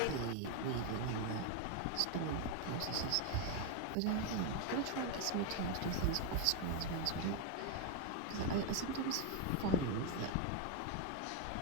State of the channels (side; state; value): both; different; correlation 0.01